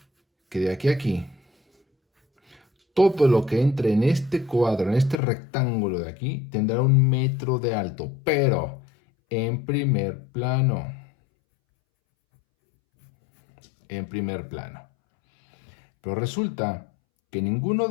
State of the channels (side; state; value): right; drops out; at 5.2 s